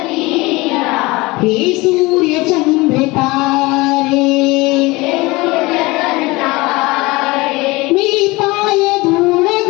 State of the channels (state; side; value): quieter; right; 22.6 dB